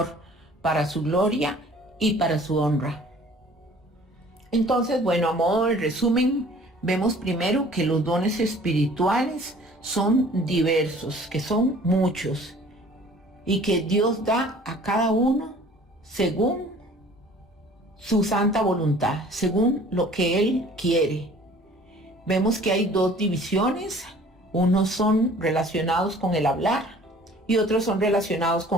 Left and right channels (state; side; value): normal; both; correlation 0.51